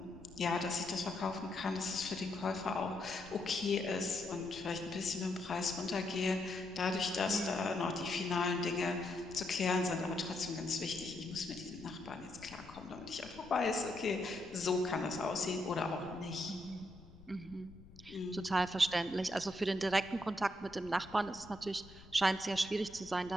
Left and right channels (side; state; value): left; noise; rumble, 20 dB below the sound